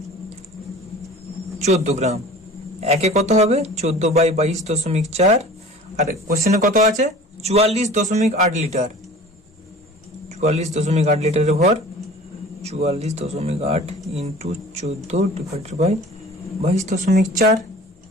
14 গ্রাম। একে কত হবে? 14/22.4। আর কোশ্চেনে কত আছে? 44.8 লিটার। 44.8 লিটারের ভর 44.8 ইন্টু 14 ডিভাইডেড বাই 22.4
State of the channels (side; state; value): both; normal; correlation 0.43